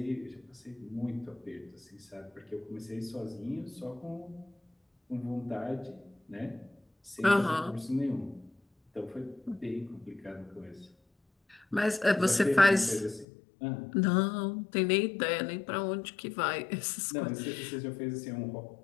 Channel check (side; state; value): right; drops out; at 13.2 s